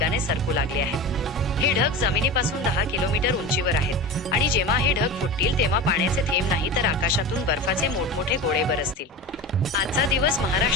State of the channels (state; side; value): normal; both; correlation 0.28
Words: सरकू लागले आहेत. हे ढग जमिनीपासून 10 किलोमीटर उंचीवर आहेत आणि जेव्हा हे ढग फुटतील तेव्हा पाण्याचे थेंब नाही तर आकाशातून बर्फाचे मोठमोठे गोळे बरसतील. आजचा दिवस